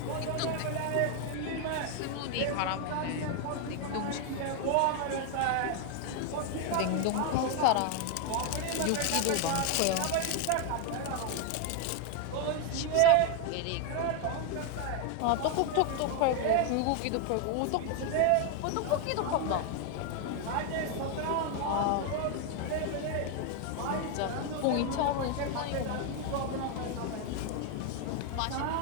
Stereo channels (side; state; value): both; different; correlation 0.01